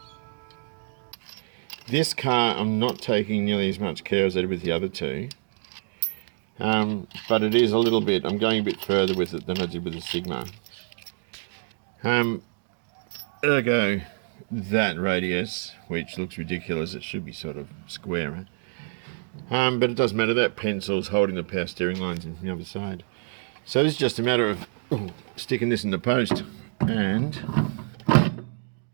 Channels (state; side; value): silent; left; 60 dB below the other